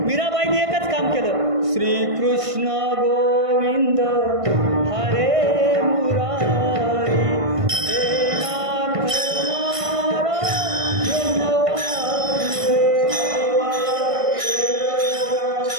मीराबाईने एकच काम केलं. श्रीकृष्ण गोविंद हरे मुरारी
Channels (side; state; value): left; late; 1.5 ms